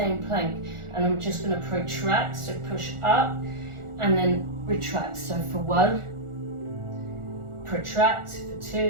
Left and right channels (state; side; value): late; left; 1.4 ms